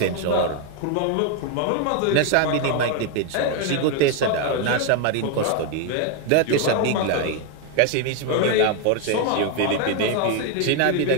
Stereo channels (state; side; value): different; both; correlation 0.01